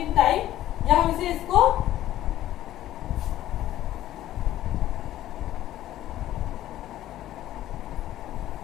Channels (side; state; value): right; quieter; 13.6 dB